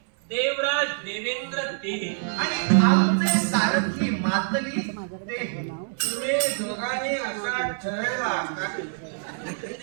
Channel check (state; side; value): silent; left; 61 dB below the other